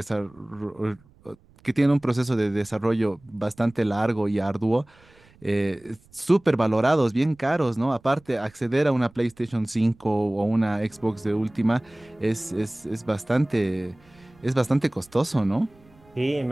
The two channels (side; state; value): right; noise; rumble, 29 dB below the sound